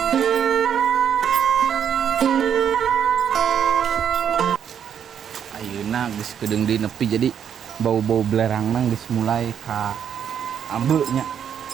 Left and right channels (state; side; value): quieter; left; 8.4 dB